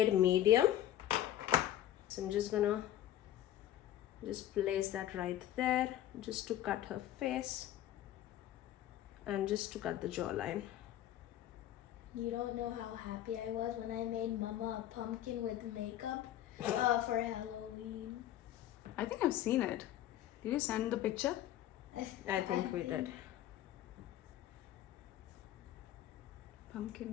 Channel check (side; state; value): right; quieter; 12.6 dB